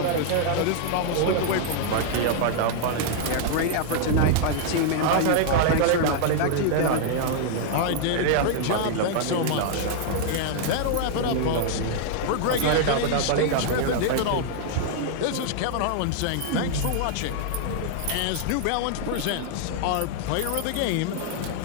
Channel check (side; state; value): both; different; correlation 0.00